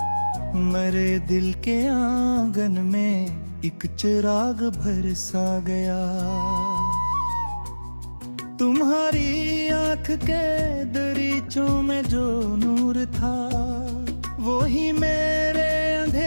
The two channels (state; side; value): inverted; both; correlation -1.00